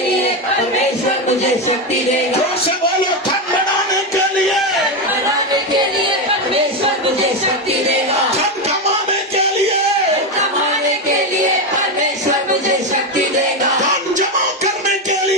लिए परमेश्वर मुझे शक्ति देगा। जोर से बोलो, धन बढ़ाने के लिए, बढ़ाने के लिए परमेश्वर मुझे शक्ति देगा. धन कमाने के लिए, कमाने के लिए परमेश्वर मुझे शक्ति देगा. धन जमा करने के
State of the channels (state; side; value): normal; both; correlation 0.11